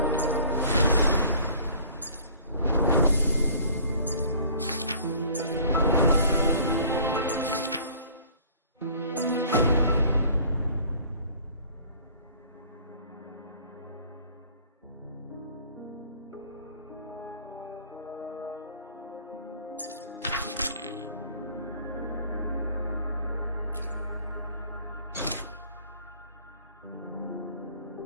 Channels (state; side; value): inverted; both; correlation -0.51